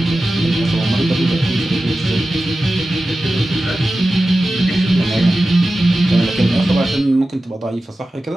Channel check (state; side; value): normal; both; correlation 0.94